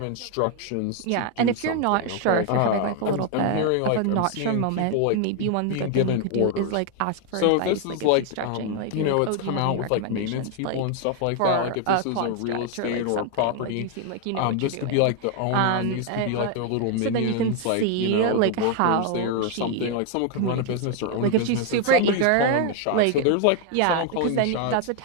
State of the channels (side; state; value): both; different; correlation 0.01